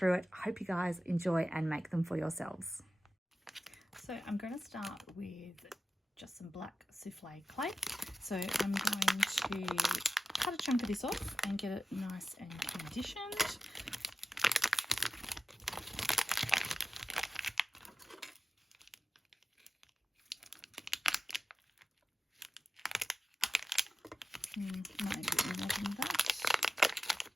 it. I hope you guys enjoy and make them for yourselves. So I'm going to start with just some black souffle clay. So I'm going to cut a chunk of this off and get it nice and conditioned. Might need a bit more than that.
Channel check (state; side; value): normal; both; correlation 0.92